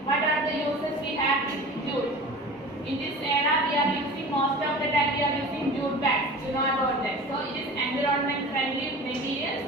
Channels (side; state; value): both; normal; correlation 0.37